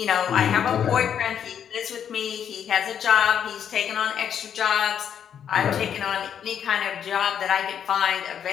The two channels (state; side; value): quieter; right; 8.6 dB